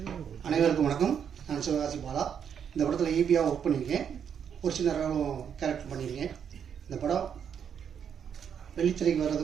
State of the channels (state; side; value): quieter; left; 7.9 dB